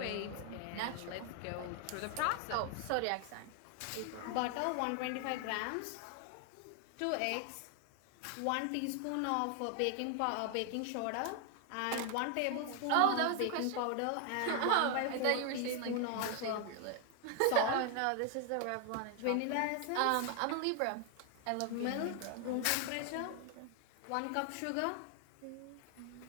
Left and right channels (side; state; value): both; different; correlation 0.00